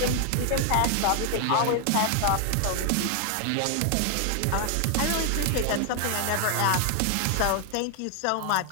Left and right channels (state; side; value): different; both; correlation 0.00